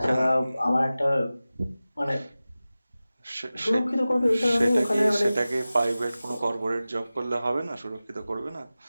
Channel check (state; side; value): inverted; both; correlation -0.96